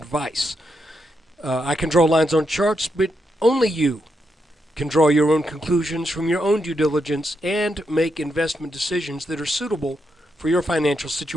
I can draw lines on charts, but only you can draw your own conclusions from your own due diligence and make investment decisions that are suitable for your financial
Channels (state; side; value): normal; both; correlation 0.82